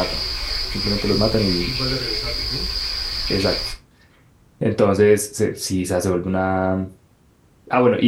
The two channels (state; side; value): identical; both; correlation 1.00